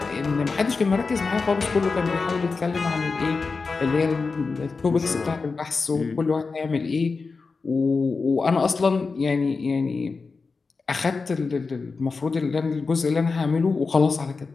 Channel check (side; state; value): right; quieter; 4.4 dB